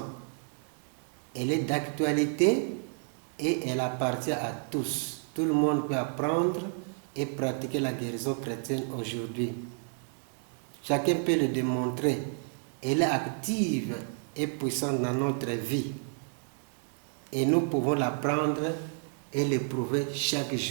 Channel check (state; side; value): silent; left; 57 dB below the other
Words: Elle est d'actualité et elle appartient à tous. Tout le monde peut apprendre et pratiquer la guérison chrétienne aujourd'hui. Chacun peut le démontrer. Elle est active et puissante dans notre vie. Et nous pouvons l'apprendre et l'éprouver chaque